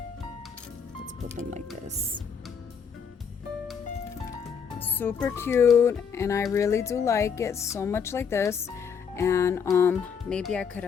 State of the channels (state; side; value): quieter; right; 6.6 dB